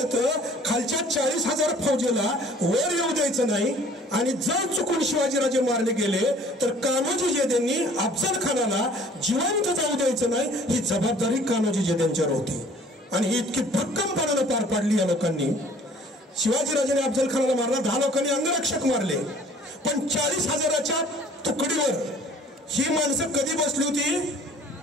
खालच्या 40,000 फौजेला वर येऊ द्यायचं नाही. आणि जर चुकून शिवाजीराजे मारले गेले तर कान्होजी जेधेंनी अफजल खानाला जिवंत जाऊ द्यायचं नाही, ही जबाबदारी कान्होजी जेधेंच्यावर होती. आणि ही इतकी भक्कमपणाने पार पाडली या लोकांनी. शिवाजीराजांनी अफजल खानाला मारला, 10 लोकांनी अंगरक्षक मारले, पण 40,000च्या तुकडीवर ही माणसं कधी बसली होती?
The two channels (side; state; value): both; normal; correlation 0.52